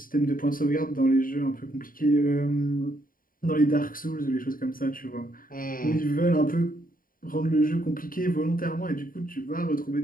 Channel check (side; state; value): right; late; 0.41 ms